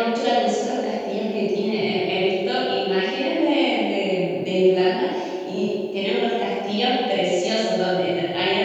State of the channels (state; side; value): identical; both; correlation 1.00